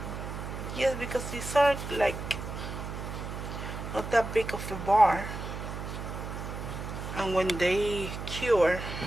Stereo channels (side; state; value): right; noise; hum, 7 dB below the sound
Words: Yes, because these are like not that big of a bar, and when they cure